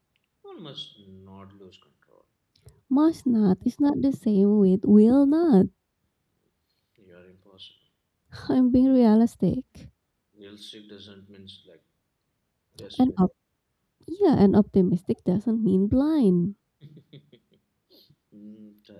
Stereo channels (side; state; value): both; identical; correlation 1.00